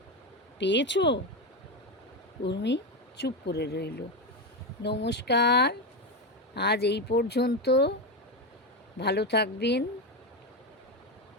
পেয়েছো? উর্মি চুপ করে রইল। নমস্কার, আজ এই পর্যন্ত। ভালো থাকবেন,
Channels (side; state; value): both; normal; correlation 0.12